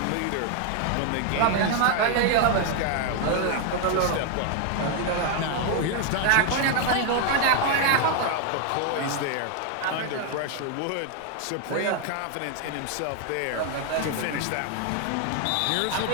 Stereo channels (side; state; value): both; different; correlation 0.00